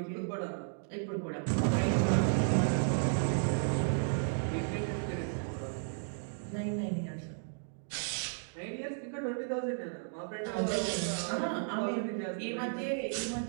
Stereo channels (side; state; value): left; silent; digital silence